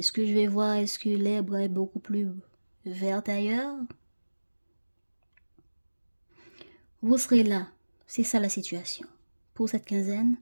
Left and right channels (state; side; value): inverted; both; correlation -1.00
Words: que je vais voir, est-ce que l'herbe est beaucoup plus verte ailleurs? Vous serez là. C'est ça la situation. Pour cette quinzaine,